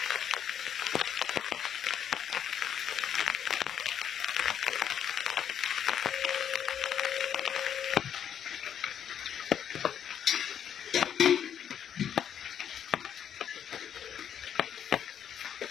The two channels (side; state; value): right; quieter; 9.0 dB